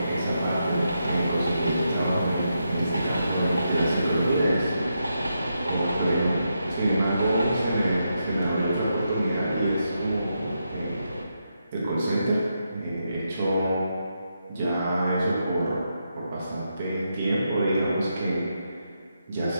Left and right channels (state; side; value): inverted; both; correlation -0.84